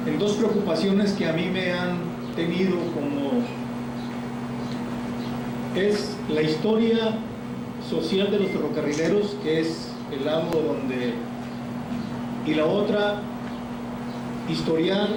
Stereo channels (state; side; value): identical; both; correlation 1.00